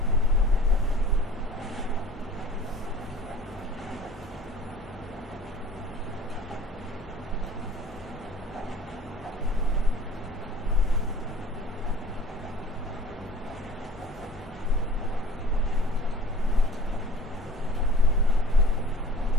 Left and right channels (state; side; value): normal; both; correlation 0.47